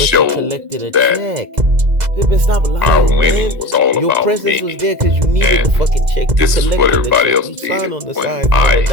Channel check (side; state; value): left; late; 2.0 ms